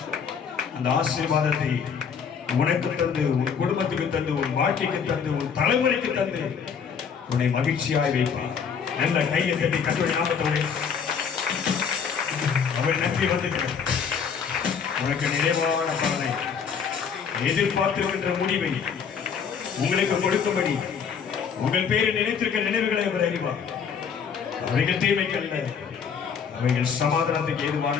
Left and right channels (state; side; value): quieter; right; 6.7 dB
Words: அந்த ஆசீர்வாதத்தை உனக்கு தந்து, உன் குடும்பத்துக்கு தந்து, உன் வாழ்க்கைக்கு தந்து, உன் தலைமுறைக்கு தந்து உன்னை மகிழ்ச்சியாய் வைப்பார். நல்ல கையை தட்டி கர்த்தருடைய நாமத்தோடு அவர் நன்றி வந்துட்டார். உனக்கு நிறைவான பலனை, எதிர்பார்த்திருக்கின்ற முடிவை உங்களுக்கு கொடுக்கும்படி உங்கள் பேரை நினைத்திருக்க நினைவுகளை அவர் அறிவார். அவைகள் தீமைக்கல்ல, அவைகள் சமாதானத்துக்கு ஏதுவான